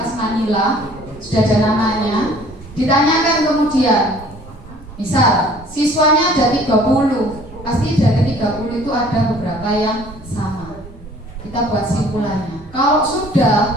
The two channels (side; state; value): right; noise; rumble, 19 dB below the sound